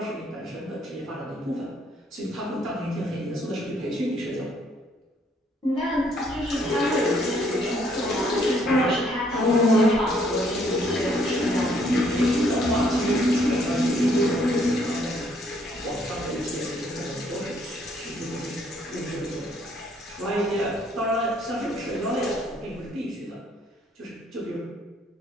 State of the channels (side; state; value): both; normal; correlation 0.67